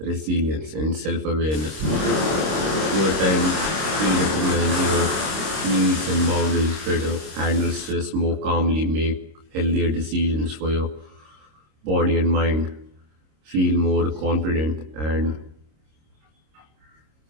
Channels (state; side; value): late; left; 26 ms